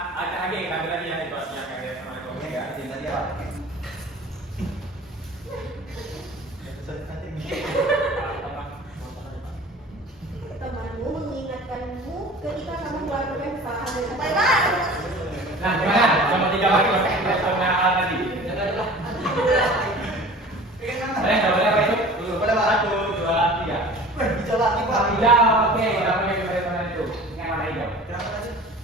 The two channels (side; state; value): both; normal; correlation 0.42